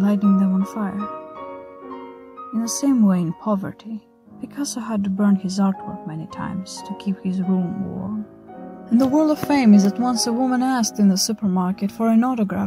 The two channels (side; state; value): both; identical; correlation 1.00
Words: lighting them on fire. In the same way, in poverty, Picasso had to burn his artwork many times to keep his room warm. In the world of fame is that once a woman asked in the supermarket for an